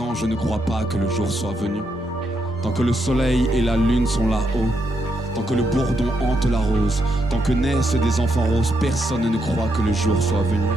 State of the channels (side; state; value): both; normal; correlation 0.80